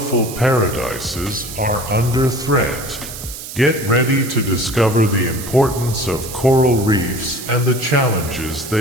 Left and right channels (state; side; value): noise; right; hiss, 11 dB below the sound